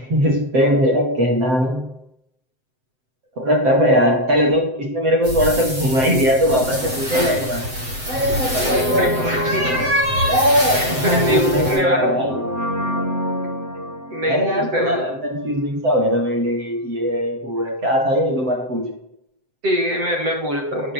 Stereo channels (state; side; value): late; left; 7.7 ms